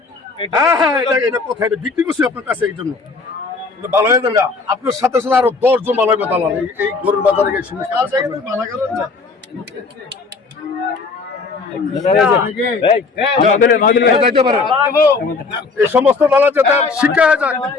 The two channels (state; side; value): quieter; right; 4.2 dB